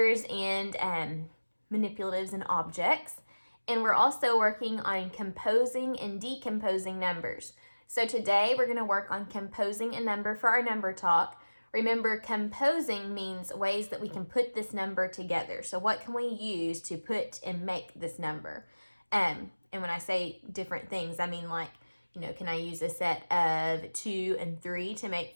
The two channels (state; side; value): inverted; both; correlation -1.00